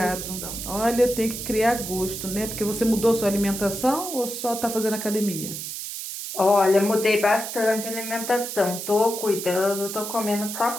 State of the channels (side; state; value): right; noise; hiss, 7 dB below the sound